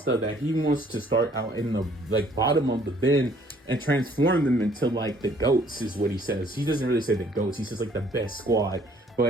that he wants to start out in the like bottom of the bin and transform them into like the goats, is what he says. He doesn't really say the goats, he says like the best squad.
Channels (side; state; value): both; normal; correlation 0.60